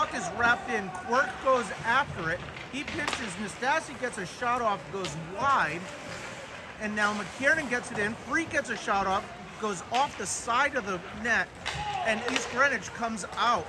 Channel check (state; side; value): identical; both; correlation 1.00